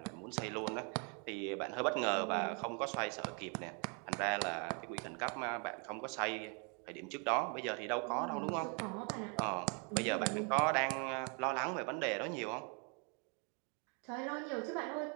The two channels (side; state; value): left; quieter; 36.8 dB